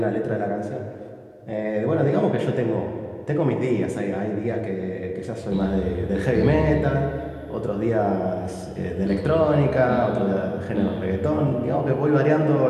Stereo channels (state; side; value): identical; both; correlation 1.00